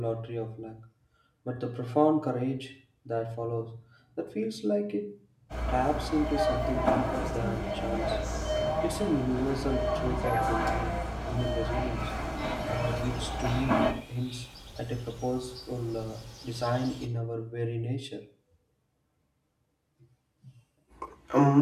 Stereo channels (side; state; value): both; identical; correlation 1.00